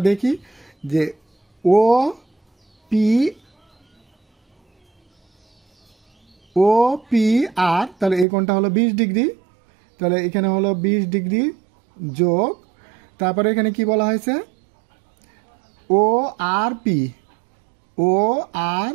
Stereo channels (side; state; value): left; drops out; at 8.2 s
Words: দেখি যে OPR, তাহলে এই কোণটা হলো 20 ডিগ্রি, তাহলে এখানে হলো 20 ডিগ্রি যোগ, তারপরে এখানে কি বলা হয়েছে ORP